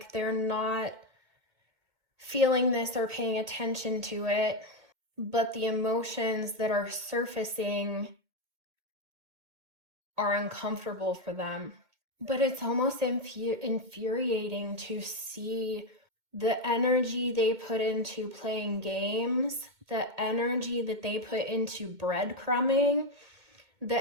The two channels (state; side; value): late; left; 2.1 ms